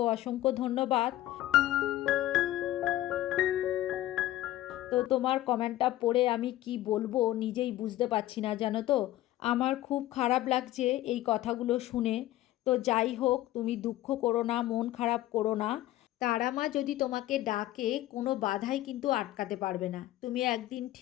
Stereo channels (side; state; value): right; quieter; 14.9 dB